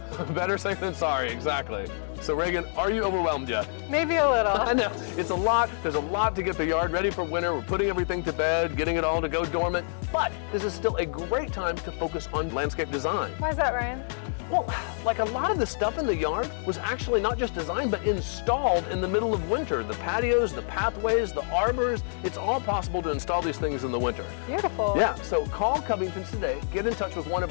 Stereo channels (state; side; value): silent; right; digital silence